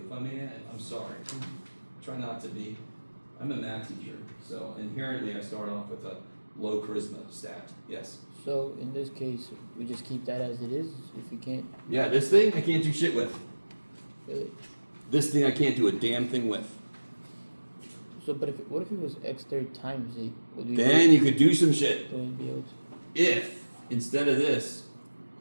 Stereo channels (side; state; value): both; inverted; correlation -1.00